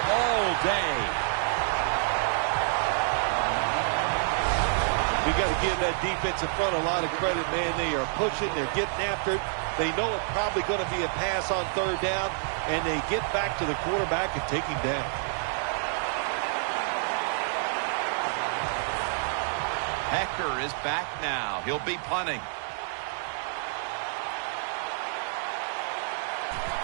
all day. We got to give that defense in front a lot of credit, man. They are pushing. They're getting after it. They know it's probably going to be a pass on third down, and they get back to the quarterback and take him down. Hector is back now. He'll be punting.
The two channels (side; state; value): left; silent; digital silence